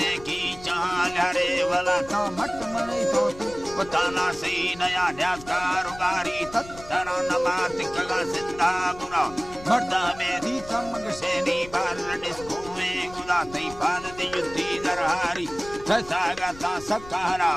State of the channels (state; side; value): noise; left; rumble, 18 dB below the sound